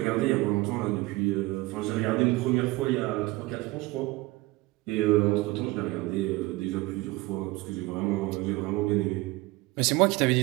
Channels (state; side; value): quieter; left; 20.8 dB